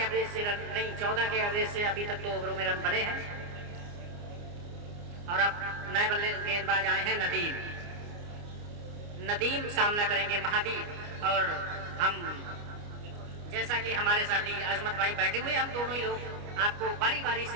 एवरेज से रन नहीं, 14 के एवरेज से अभी तक 2 ओवरों में रन बने हैं। और अब नए बल्ले गेंदबाज आए हैं नदीम। नदीम सामना करेंगे महावीर। और हम जैसा कि हमारे साथी अजमत भाई बैठे हुए, हम दोनों ही लोग आपको बारी बारी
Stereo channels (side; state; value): left; late; 29 ms